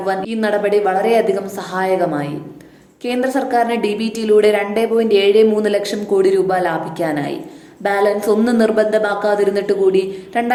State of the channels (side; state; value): both; identical; correlation 1.00